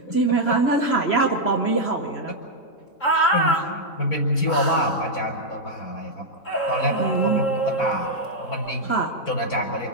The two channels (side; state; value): right; late; 3.7 ms